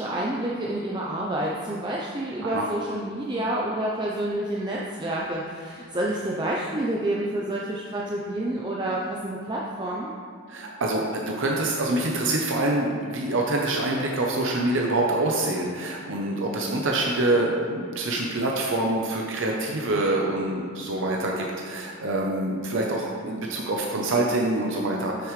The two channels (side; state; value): both; normal; correlation 0.27